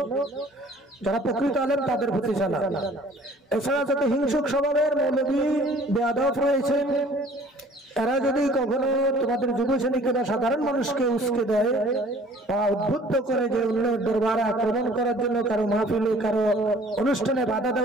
যারা প্রকৃত আলেম তাদের প্রতি জানা। এছাড়া যত হিংসুক স্বভাবের মৌলভী বেয়াদব রয়েছে, এরা যদি কখনো তোমাদের যুব শ্রেণীকে বা সাধারণ মানুষকে উস্কে দেয় বা উদ্বুদ্ধ করে যে অন্যের দরবারে আক্রমণ করার জন্য, কারো মাহফিলে, কারো অনুষ্ঠানে বাধা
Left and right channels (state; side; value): normal; both; correlation 0.52